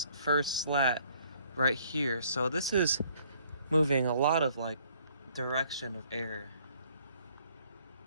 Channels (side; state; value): both; inverted; correlation -0.62